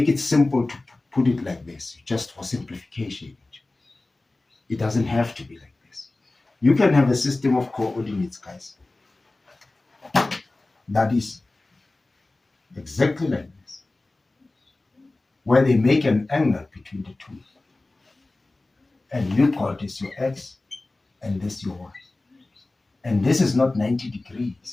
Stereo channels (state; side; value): quieter; right; 3.0 dB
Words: it simple to put it like this, just for simplification. It doesn't have to be like this. You can have a system of coordinates, guys, that is exactly like this, where they make an angle between the two. And you call this your x, and this your y. And this is not 90